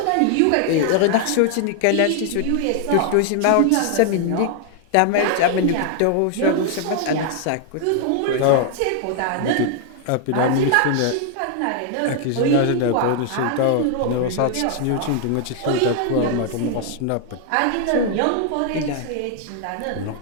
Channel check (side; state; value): both; different; correlation 0.00